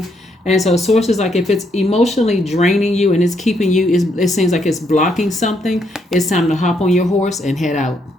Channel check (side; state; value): both; normal; correlation 0.75